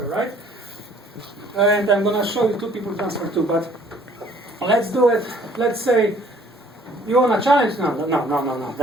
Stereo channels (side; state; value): both; normal; correlation 0.58